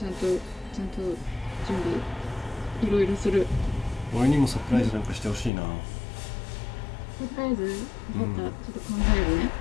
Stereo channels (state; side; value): drops out; right; at 5.5 s